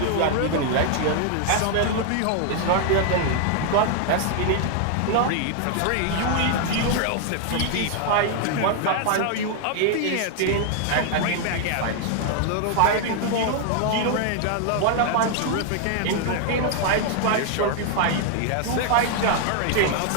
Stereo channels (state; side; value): different; both; correlation 0.00